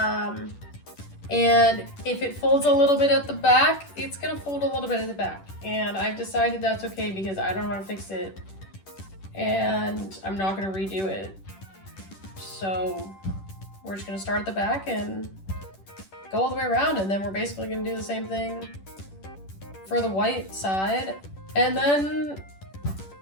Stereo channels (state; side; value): late; right; 10 ms